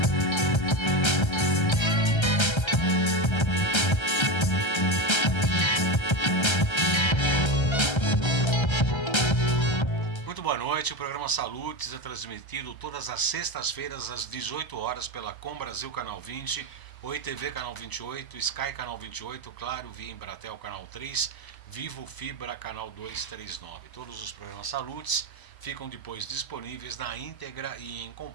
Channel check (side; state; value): right; late; 1.3 ms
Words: Muito boa noite, o programa Saludes é transmitido todas as sextas-feiras às 18 horas pela Com Brasil Canal 20, Oi TV Canal 28, Sky Canal 28, Claro, Via Embratel Canal 3, Vivo Fibra Canal 239. Todos os programas Saludes ficam depois disponíveis na íntegra e em